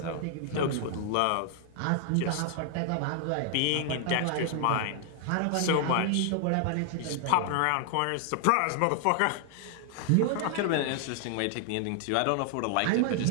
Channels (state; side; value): different; both; correlation 0.00